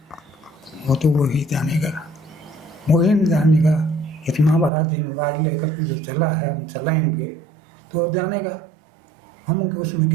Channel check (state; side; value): drops out; left; at 4.7 s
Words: वो तो वही जानेगा, वही नहीं जानेगा। इतना बड़ा जिम्मेदारी लेकर के जो चला है, हम चलाएंगे तो वो जानेगा। हम उसमें